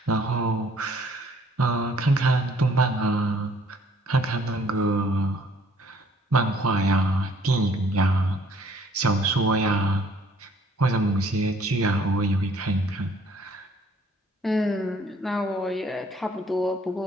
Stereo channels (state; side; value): normal; both; correlation 0.59